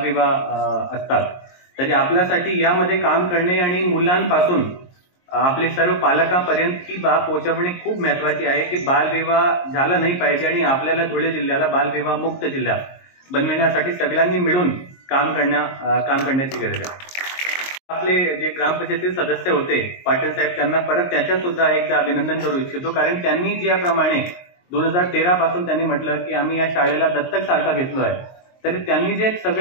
असतात. तरी आपल्यासाठी यामध्ये काम करणे आणि मुलांपासून आपले सर्व पालकांपर्यंत ही बाब पोहोचवणे खूप महत्वाची आहे की बालविवाह झाला नाही पाहिजे. आणि आपल्याला धुळे जिल्ह्याला बालविवाह मुक्त जिल्हा बनविण्यासाठी सगळ्यांनी मिळून काम करण्याची गरज आहे. आपले जे ग्रामपंचायतीचे सदस्य होते पाटील साहेब, त्यांना परत त्याच्या सुद्धा एकदा अभिनंदन करू इच्छितो. कारण त्यांनी ज्याप्रमाणे 2013 पासून त्यांनी म्हटलं की आम्ही या शाळेला दत्तक सारखा घेतलो आहे, तरी त्यांनी जे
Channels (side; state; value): right; late; 22 ms